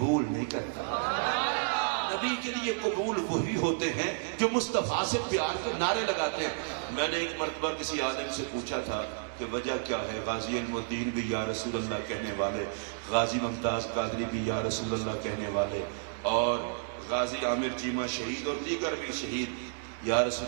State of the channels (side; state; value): left; silent; digital silence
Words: نہیں کرتا۔ نبی کے لیے قبول وہی ہوتے ہیں جو مصطفیٰ سے پیار کے نعرے لگاتے ہیں۔ میں نے ایک مرتبہ کسی عالم سے پوچھا تھا کہ وجہ کیا ہے، غازی علم الدین بھی یا رسول اللہ کہنے والے، غازی ممتاز قادری بھی یا رسول اللہ کہنے والے، اور غازی عامر چیمہ شہید اور دیگر بھی شہید یا